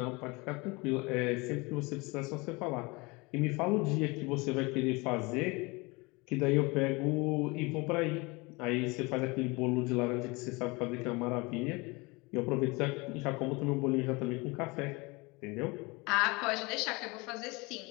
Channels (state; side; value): quieter; right; 25.8 dB